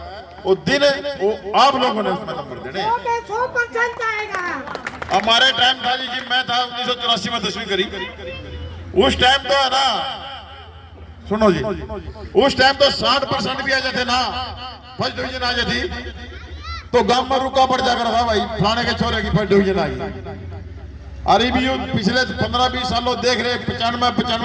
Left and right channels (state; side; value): identical; both; correlation 1.00